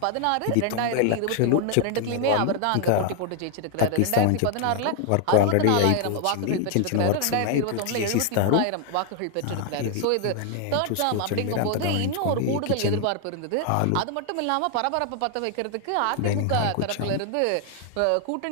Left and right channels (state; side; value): different; both; correlation 0.00